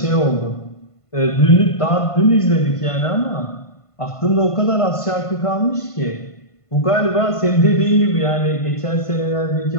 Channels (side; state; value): right; late; 1.5 ms